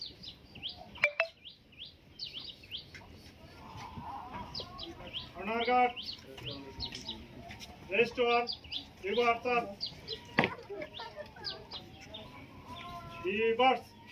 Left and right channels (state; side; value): identical; both; correlation 1.00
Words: সোনারঘাট রেজিস্ট্রার ইবু Aftab reverse